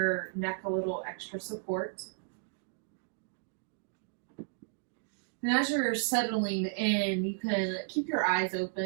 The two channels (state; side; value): silent; left; digital silence